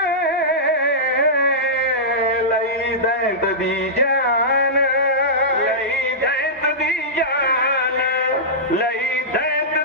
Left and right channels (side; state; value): both; normal; correlation -0.14